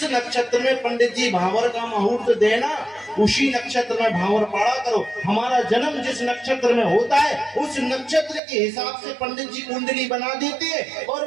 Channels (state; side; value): drops out; left; at 8.4 s